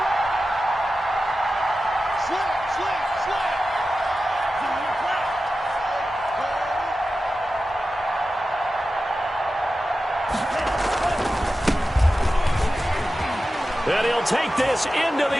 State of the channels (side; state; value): both; normal; correlation 0.93